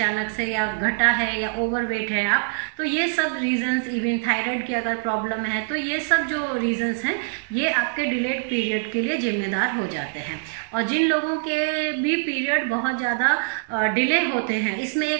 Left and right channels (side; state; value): left; silent; digital silence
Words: से या घटा है या ओवरवेट है आप, तो ये सब रीजंस, इवन थायराइड की अगर प्रॉब्लम है, तो ये सब जो रीजंस हैं ये आपके डिलेड पीरियड के लिए जिम्मेदार हो जाते हैं। और जिन लोगों के भी पीरियड बहुत ज़्यादा डिले होते हैं, इसमें